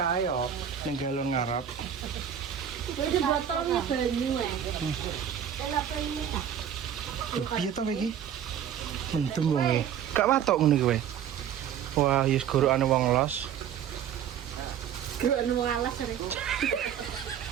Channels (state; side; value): quieter; left; 9.1 dB